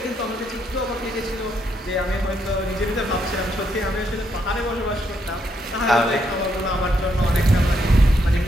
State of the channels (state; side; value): normal; both; correlation 0.76